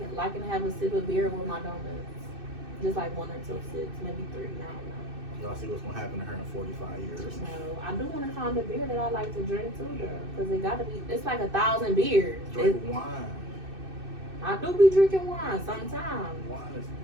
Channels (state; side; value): late; left; 2.6 ms